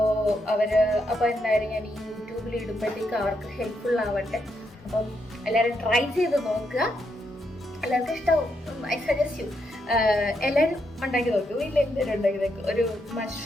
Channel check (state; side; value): normal; both; correlation 0.80